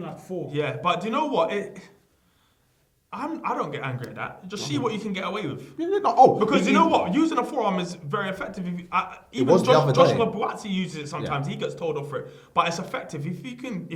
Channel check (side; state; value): both; identical; correlation 1.00